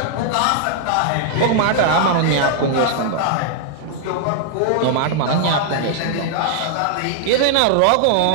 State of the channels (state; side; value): different; both; correlation -0.01